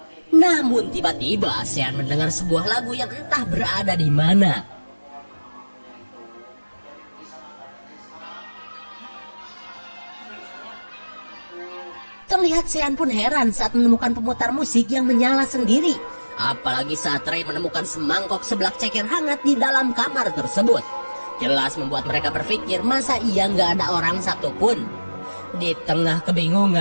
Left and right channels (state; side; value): inverted; both; correlation -1.00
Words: Namun tiba-tiba Sean mendengar sebuah lagu yang entah berada di mana. Terlihat Sean pun heran saat menemukan pemutar musik yang menyala sendiri. Apalagi saat Ray menemukan semangkok seblak ceker hangat di dalam kamar tersebut. Jelas membuat mereka berpikir masa iya nggak ada orang satupun. Di tengah